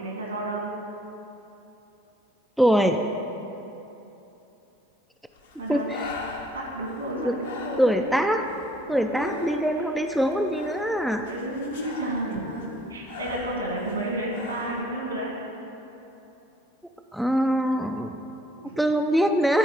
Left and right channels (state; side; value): normal; both; correlation 0.64